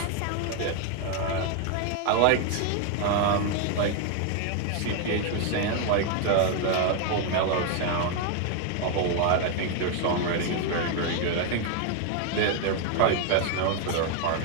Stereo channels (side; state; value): both; different; correlation 0.01